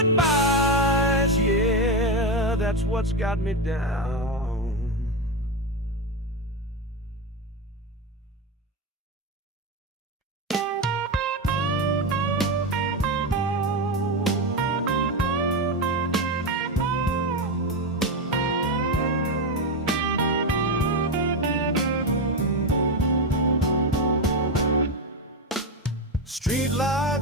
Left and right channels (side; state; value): both; normal; correlation 0.12